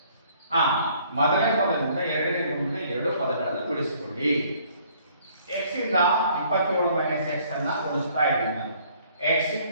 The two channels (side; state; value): both; inverted; correlation -0.60